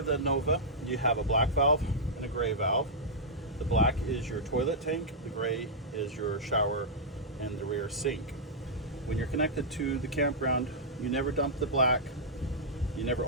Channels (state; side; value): normal; both; correlation -0.10